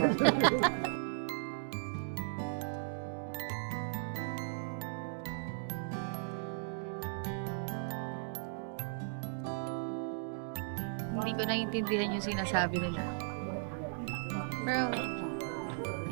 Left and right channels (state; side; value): silent; left; digital silence